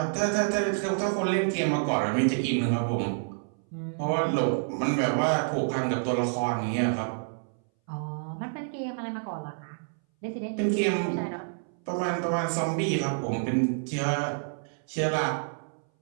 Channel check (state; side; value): silent; left; 59 dB below the other